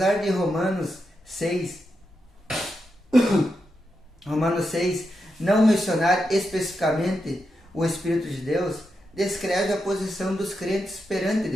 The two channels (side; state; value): both; normal; correlation 0.86